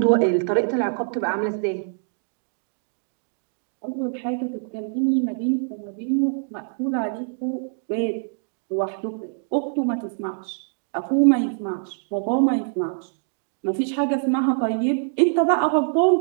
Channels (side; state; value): left; silent; digital silence